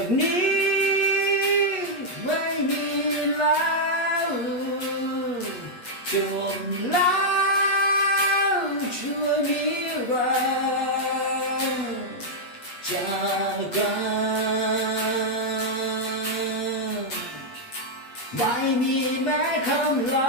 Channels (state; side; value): late; right; 8.4 ms